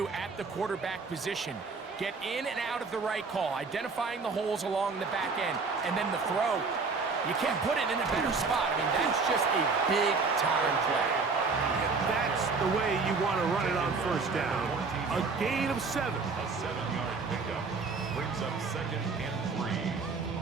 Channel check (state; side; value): quieter; left; 4.5 dB